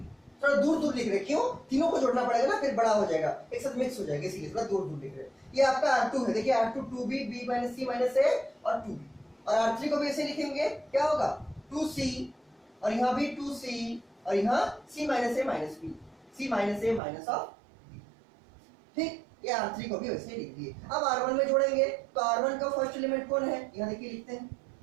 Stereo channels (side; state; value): left; drops out; at 17.0 s